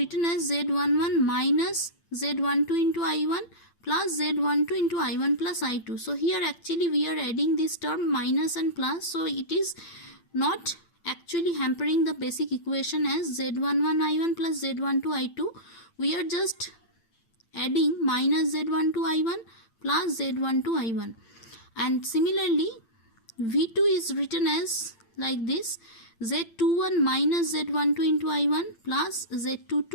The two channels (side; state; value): right; late; 8.9 ms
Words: as Z11 minus Z12 into I1 plus Z12 into I1 plus I2. So here actually we are adding this term minus and plus. So it is not actually hampering the basic equation as Z11 I1 plus Z12 I2. We are just adding minus Z12 I1 plus Z12 I1. And similarly, V2 is written as like this: Z21 minus Z12 into I1 plus